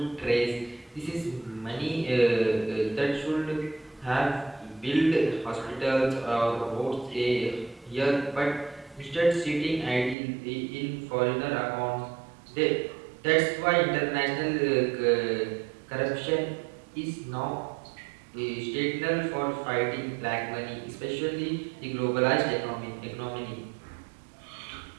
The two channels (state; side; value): drops out; left; at 10.2 s